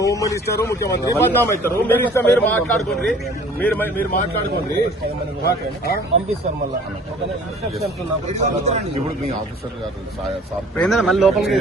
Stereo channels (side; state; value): both; normal; correlation 0.50